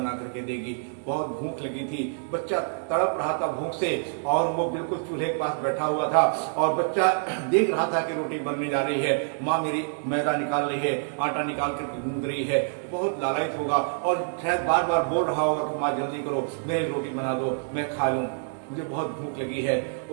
करके देगी। बहुत भूख लगी थी, बच्चा तड़प रहा था भूख से, और वो बिल्कुल चूल्हे के पास बैठा हुआ था, और बच्चा देख रहा था कि रोटी बनने जा रही है, माँ मेरी मैदा निकाल रही है, आटा निकाल करके गूंद रही है। बहुत लालायित होगा और शायद बार बार बोल रहा होगा कि माँ जल्दी करो, मेरी रोटी बना दो, मैं खा लूं, मुझे बहुत भूख लगी है।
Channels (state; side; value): silent; left; digital silence